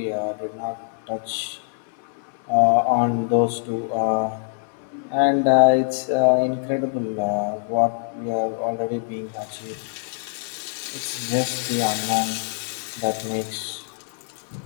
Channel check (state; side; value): silent; right; digital silence